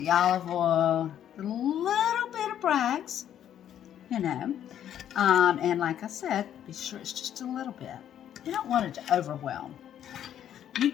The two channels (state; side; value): quieter; right; 10.3 dB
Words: olive oil, a little bit of Bragg's, you know. And like I said, be sure it's just a little bit. You don't want it to overwhelm. You